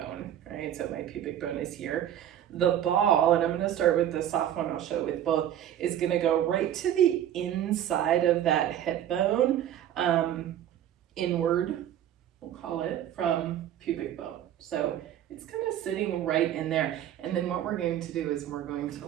right? So my pubic bone is here. The ball, and I'm gonna start with the soft one, I'll show it with both, is gonna go right to the inside of that hip bone, inward, we'll call it, from pubic bone. So it's kind of sitting right in there. And then what we're going to do is we're going to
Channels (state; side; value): quieter; left; 11.0 dB